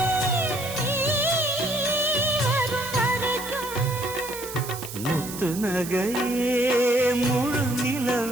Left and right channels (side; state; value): right; noise; hiss, 10 dB below the sound